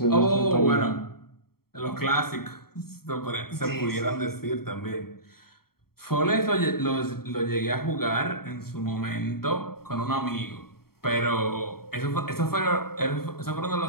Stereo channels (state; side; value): late; right; 0.94 ms